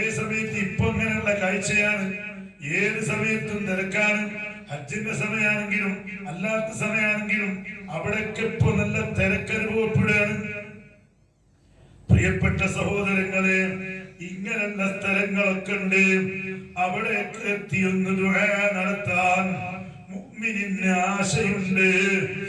സമയത്ത് ഇപ്പൊ അങ്ങനെയുള്ള കാഴ്ചയാണ്. ഏത് സമയത്തും തിരക്കാണ്. ഹജ്ജിന്റെ സമയമാണെങ്കിലും അല്ലാത്ത സമയമാണെങ്കിലും അവിടെയൊക്കെ ഇപ്പൊ നല്ല തിരക്കനുഭവപ്പെടുകയാണ്. പ്രിയപ്പെട്ട സഹോദരങ്ങളെ, ഇങ്ങനെയുള്ള സ്ഥലങ്ങളൊക്കെ ഉണ്ട്. അവിടെയൊക്കെ എത്തിയൊന്ന് ദുആ നടത്താൻ മുഅ്മിനിന് ആശയുണ്ട്.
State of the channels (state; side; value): identical; both; correlation 1.00